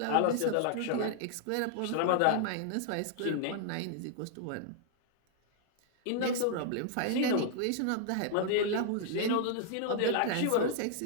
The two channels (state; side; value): different; both; correlation -0.01